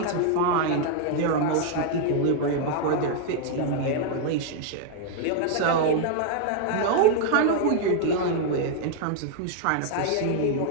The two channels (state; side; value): different; both; correlation -0.01